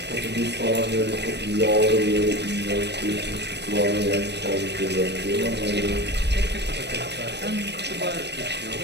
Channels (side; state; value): left; late; 0.50 ms